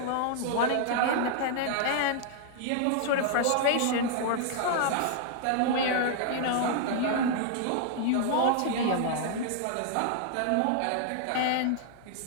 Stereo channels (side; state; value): both; different; correlation -0.01